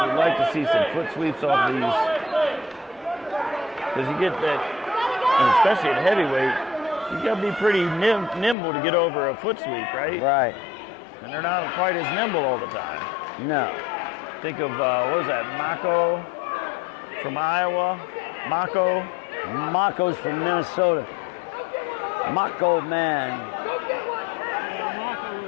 to see some foot sweeps off these. Because you get that, and especially at heavyweight, you got to be pretty nimble to get over a foot sweep, right? Right. And they're not quite as nimble all the time. No. Think of, what was that, Mako from Iowa? Mako? Mako's from Minnesota. Mako man.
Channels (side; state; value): right; drops out; at 8.6 s